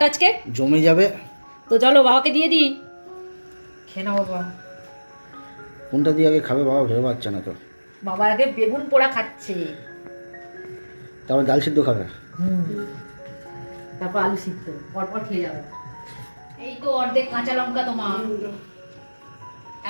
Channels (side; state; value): both; inverted; correlation -1.00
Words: আজকে? জমে যাবে। তো চলো বাবাকে দিয়ে দিই, খেয়ে নাও বাবা। কোনটা দিয়ে আগে খাবে বাবা ভেবে পাচ্ছে না তো। বাবা আগে বেগুন পোড়া খাচ্ছে, তারপর ডাল সিদ্ধ খাবে, তারপর আলু সিদ্ধ, পরপর খেয়ে যাবে। এই তো অর্ধেক কাঁচা লঙ্কা তোমার।